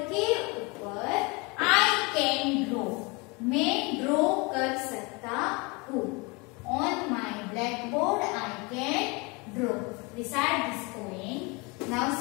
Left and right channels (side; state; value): right; quieter; 28.1 dB